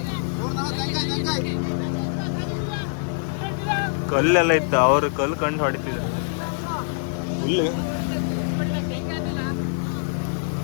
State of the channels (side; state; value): right; silent; digital silence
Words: ಕಲ್ಲೆಲ್ಲ ಇತ್ತು ಅವ್ರು ಕಲ್ಲು ಕಂಡು ಹೊಡಿತಿದ್ರು ಹುಲ್ಲು